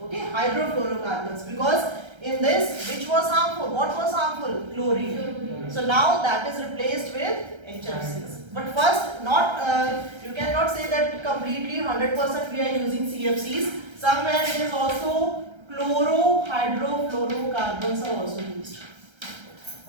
Okay, hydrofluorocarbons. Because in this, which was harmful? What was harmful? Chlorine. So now that is replaced with HFCs. But first, you cannot say that completely 100% we are using CFCs. Somewhere it is also chlorohydrofluorocarbons are also used.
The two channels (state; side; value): late; left; 1.3 ms